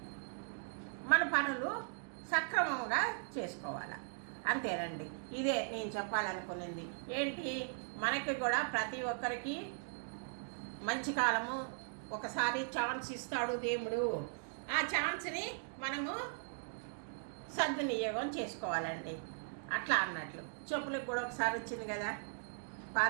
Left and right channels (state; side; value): silent; left; digital silence